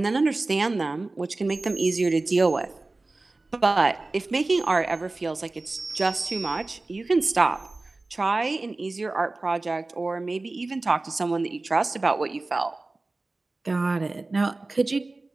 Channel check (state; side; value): quieter; left; 3.2 dB